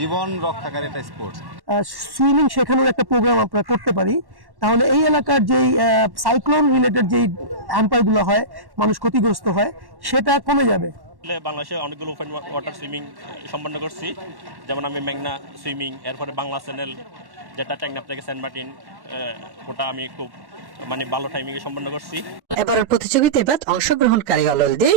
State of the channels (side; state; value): left; late; 1.1 ms